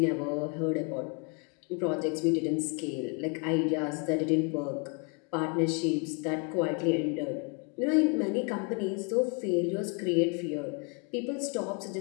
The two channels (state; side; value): quieter; right; 35.2 dB